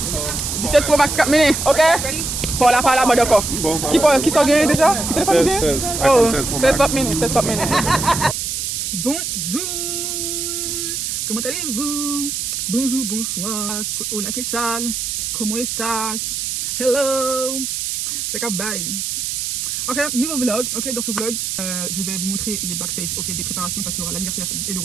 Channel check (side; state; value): right; noise; hiss, 2 dB below the sound